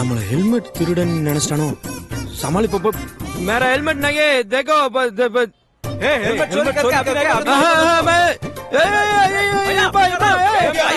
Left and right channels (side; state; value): both; identical; correlation 1.00